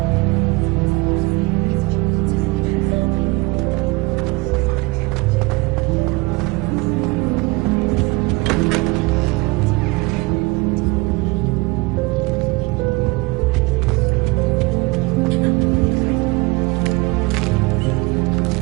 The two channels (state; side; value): quieter; left; 24.1 dB